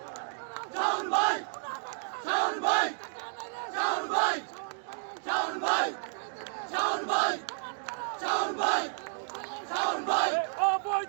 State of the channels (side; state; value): left; silent; digital silence